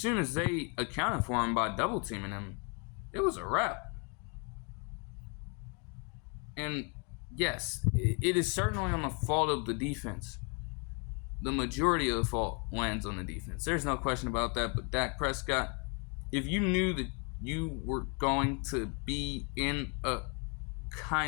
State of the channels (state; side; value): quieter; right; 35.7 dB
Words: as they accounted for him by double-teaming him, it was a wrap. And yes, it is certainly on the fault of the defense. The majority of the fault lands on the defense. There's no question about that, but Dak Prescott, if you knew that you were going to be in a